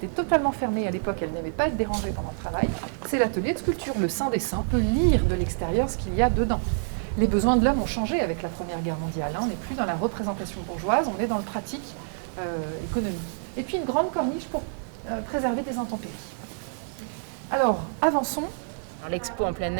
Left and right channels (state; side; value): silent; left; 55 dB below the other